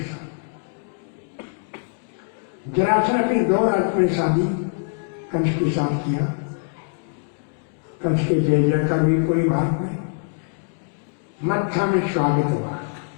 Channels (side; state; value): right; silent; digital silence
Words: साथ। जरासंध अपनी 2 राजकुमारी शादी कंस के साथ किया। कंस के जय जयकार भी पूरी भारत में, मत्था में स्वागत हुआ।